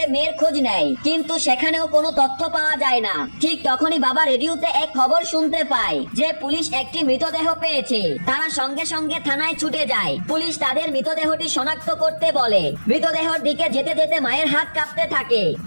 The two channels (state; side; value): inverted; both; correlation -1.00